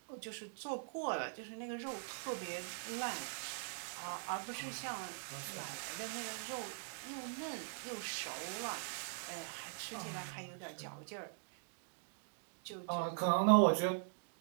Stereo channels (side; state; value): left; silent; digital silence